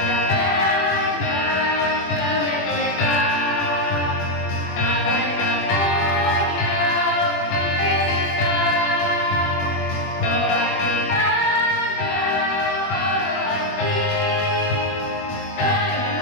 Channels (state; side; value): late; right; 21 ms